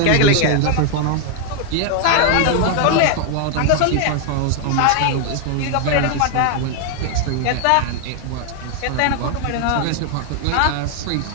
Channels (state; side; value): different; both; correlation 0.00